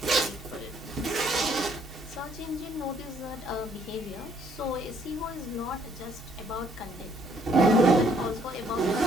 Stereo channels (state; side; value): normal; both; correlation 0.66